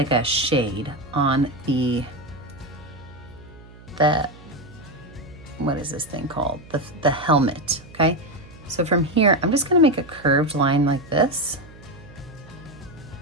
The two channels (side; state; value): right; noise; hum, 20 dB below the sound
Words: a shade on the what is this thing called? The helmet, okay? So from here, I'm just gonna make a curved line like this.